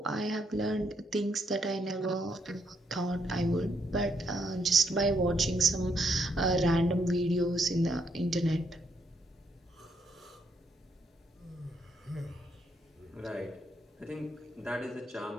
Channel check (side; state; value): both; normal; correlation 0.75